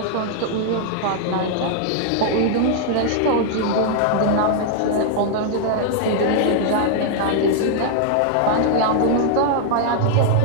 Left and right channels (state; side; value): different; both; correlation -0.01